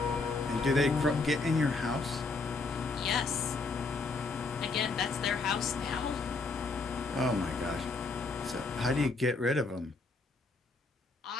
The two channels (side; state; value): right; quieter; 3.8 dB